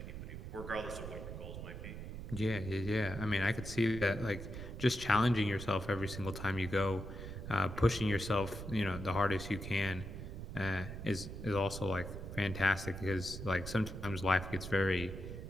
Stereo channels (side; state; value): right; noise; rumble, 8 dB below the sound